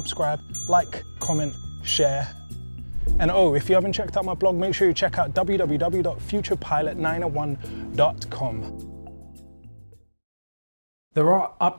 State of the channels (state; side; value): inverted; both; correlation -1.00